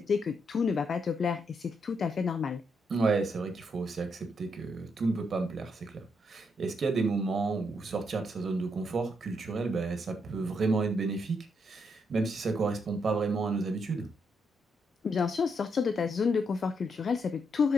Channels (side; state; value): both; normal; correlation 0.78